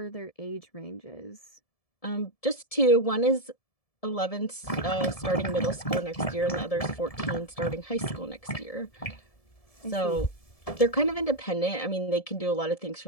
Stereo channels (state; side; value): late; right; 1.7 ms